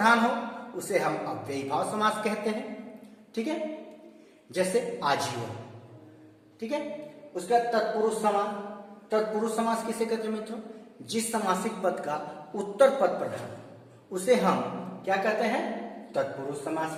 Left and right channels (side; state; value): both; identical; correlation 1.00